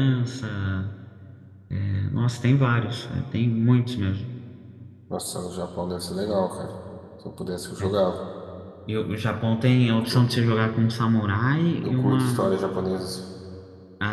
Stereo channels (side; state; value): both; identical; correlation 1.00